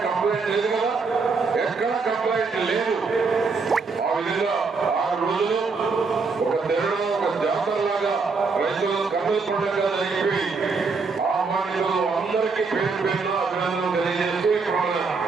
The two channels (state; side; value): quieter; left; 4.5 dB